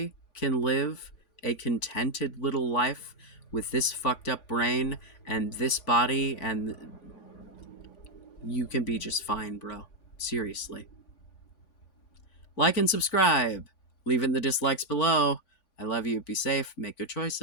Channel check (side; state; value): right; late; 3.5 ms